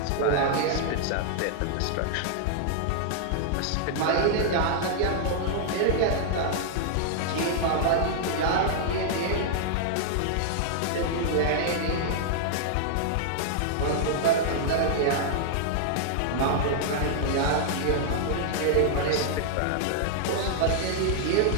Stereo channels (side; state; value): both; different; correlation -0.01